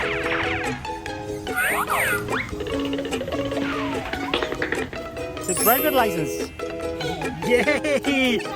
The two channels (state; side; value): identical; both; correlation 1.00